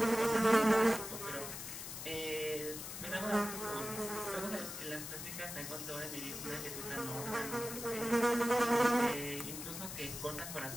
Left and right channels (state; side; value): noise; left; hiss, 8 dB below the sound